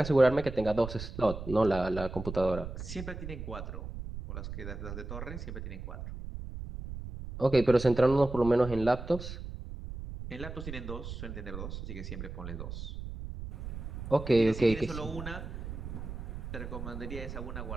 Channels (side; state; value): right; noise; rumble, 8 dB below the sound